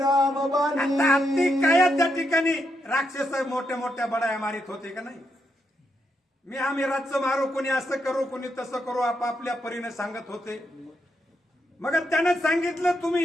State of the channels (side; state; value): both; normal; correlation 0.81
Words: बाणी. आता हत्ती काय त्या ठिकाणी राक्षस मोठ्या मोठ्या बडाया मारित होते का नाही. मी आम्ही राज्य मारू, कोणी असं करू कोणी तसं करू आपापल्या परीने सांगत होते. मग त्यानं सांगितलं